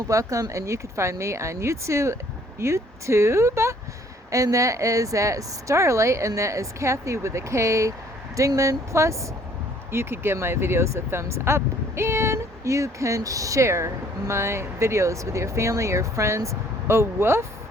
welcome, and you can find me on YouTube, and that is at Starlight, and that is Kathy with a K, Dingman. Plus, you could give my videos a thumbs up, and you can share my videos with your family, your friends. A woof,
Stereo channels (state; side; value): normal; both; correlation 0.60